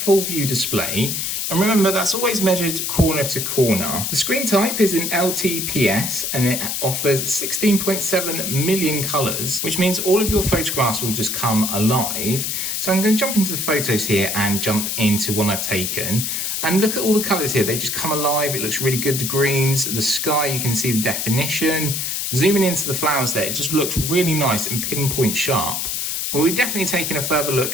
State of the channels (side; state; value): left; noise; hiss, 1 dB below the sound